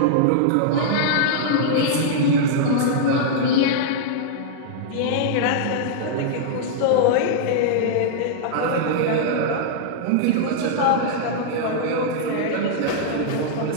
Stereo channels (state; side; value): different; both; correlation -0.02